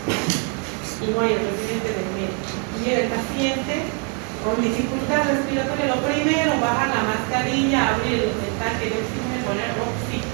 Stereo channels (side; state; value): left; quieter; 38.7 dB